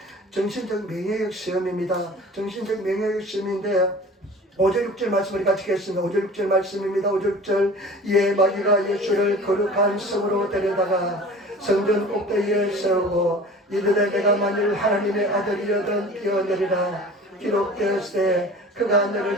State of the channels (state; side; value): normal; both; correlation 0.42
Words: 정신적 명예력 시험입니다. 정신적 명예력 시험인데 5절 6절 말씀을 같이 읽겠습니다. 5절 6절 말씀입니다. 5절 6절 이에 마귀가 예수를 거룩한 성으로 데려다가 성전 꼭대기에 세우고 이르되 내가 만일 하나님의 아들이여든 뛰어내리라 기록되었을 때 그가